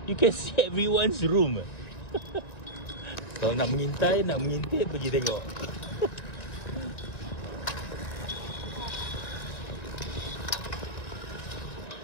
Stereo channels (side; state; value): right; late; 1.9 ms